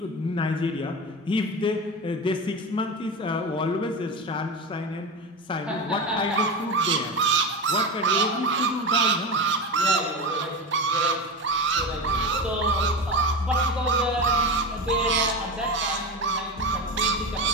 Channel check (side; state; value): both; normal; correlation 0.23